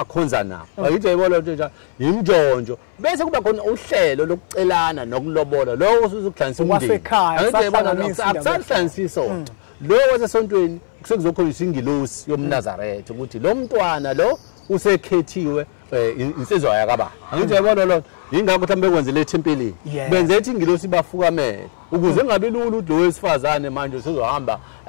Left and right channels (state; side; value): silent; right; 63 dB below the other